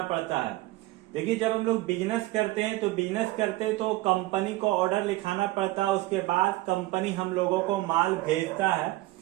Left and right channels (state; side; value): quieter; left; 18.7 dB